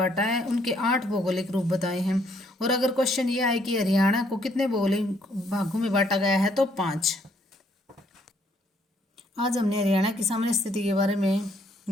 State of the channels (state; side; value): normal; both; correlation 0.68